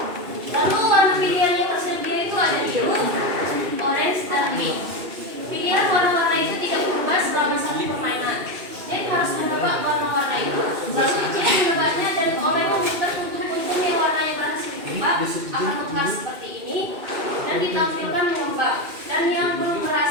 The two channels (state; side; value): late; left; 2.6 ms